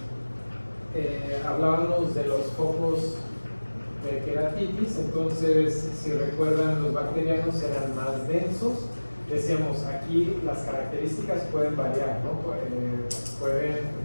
hablábamos de los focos de queratitis. Entonces, si recuerdan, los bacterianos eran más densos. Decíamos, aquí las características pueden variar, ¿no? Pueden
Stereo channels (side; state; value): both; inverted; correlation -1.00